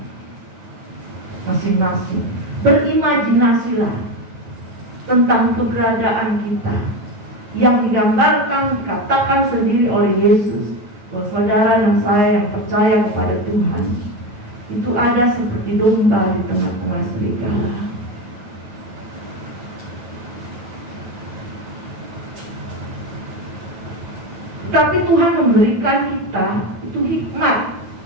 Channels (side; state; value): left; late; 8.8 ms